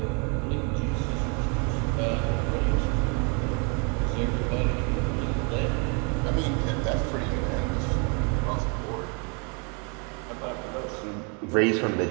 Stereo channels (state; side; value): quieter; left; 35.4 dB